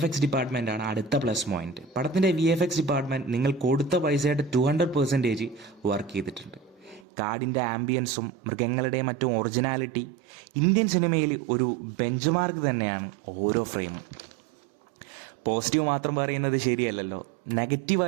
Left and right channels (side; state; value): left; drops out; at 7.0 s